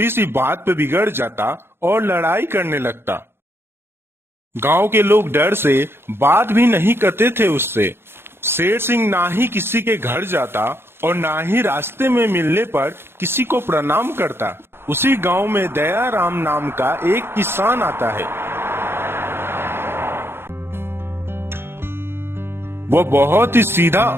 सी बात पे बिगड़ जाता और लड़ाई करने लगता। गांव के लोग डर से बात भी नहीं करते थे उससे। शेर सिंह ना ही किसी के घर जाता और ना ही रास्ते में मिलने पर किसी को प्रणाम करता। उसी गांव में दयाराम नाम का एक किसान आता है। वो बहुत ही सीधा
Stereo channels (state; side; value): late; left; 0.11 ms